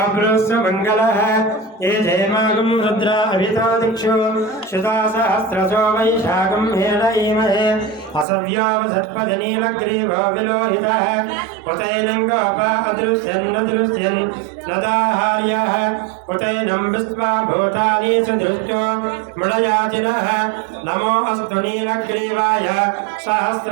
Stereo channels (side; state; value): left; drops out; at 8.2 s